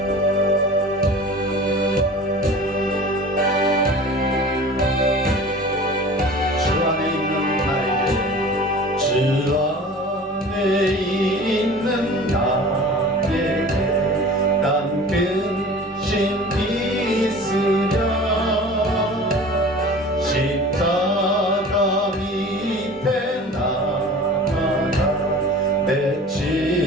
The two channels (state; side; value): normal; both; correlation 0.41